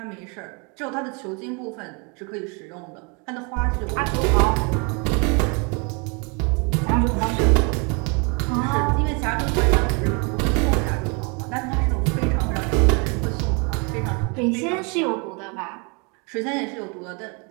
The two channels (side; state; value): left; quieter; 33.2 dB